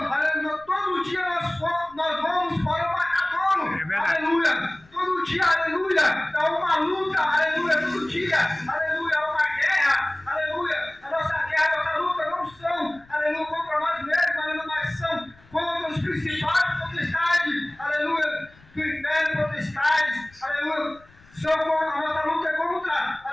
aleluia, todo dia nós vamos para o matadouro, aleluia, todo dia, aleluia, é uma luta, aleluia, todo dia, aleluia, é uma guerra, aleluia, a nossa guerra, a nossa luta não são, aleluia, contra nós mesmos, aleluia, mas são contra os principados, potestades, aleluia, do inferno, potestades, aleluia, a nossa luta é contra,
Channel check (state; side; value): noise; left; rumble, 28 dB below the sound